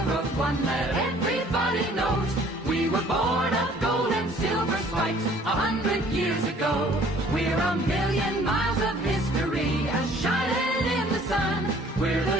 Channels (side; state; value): both; normal; correlation 0.55